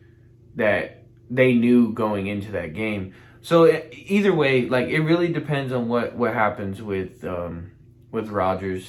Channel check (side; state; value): both; identical; correlation 1.00